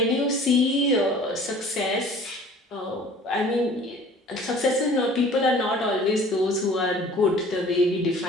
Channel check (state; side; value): normal; both; correlation 0.48